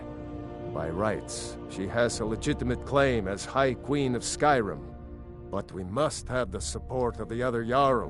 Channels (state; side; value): identical; both; correlation 1.00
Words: By rights, she has a legitimate claim as High Queen of Skyrim. But we must have the support of the other